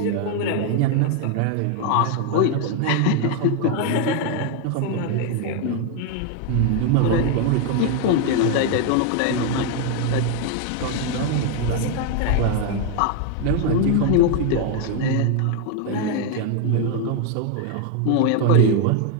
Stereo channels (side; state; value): both; different; correlation 0.01